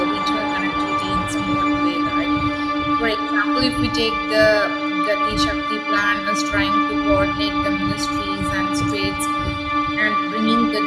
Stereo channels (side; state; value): both; identical; correlation 1.00